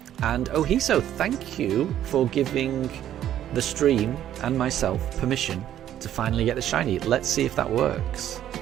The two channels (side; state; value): left; quieter; 11.3 dB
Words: And Ohiso, thank you for giving the stream and myself permission to finally get the shiny. Let's see if that works.